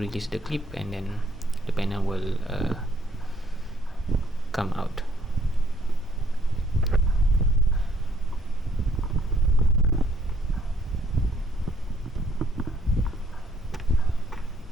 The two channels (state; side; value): normal; both; correlation 0.66